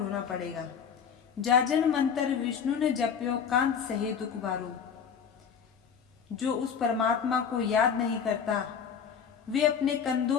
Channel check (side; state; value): right; quieter; 7.1 dB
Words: पड़ेगा। जाजन मंत्र विष्णु ने जप्यो, कांत सहे दुख बारो। जो उस परमात्मा को याद नहीं करता, वे अपने कंधों